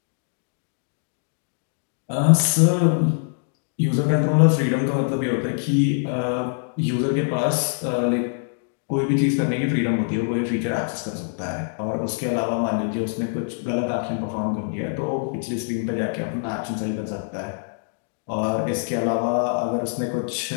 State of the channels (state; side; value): silent; right; digital silence